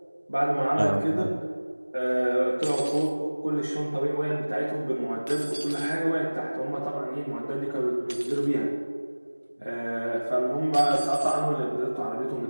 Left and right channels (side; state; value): both; inverted; correlation -1.00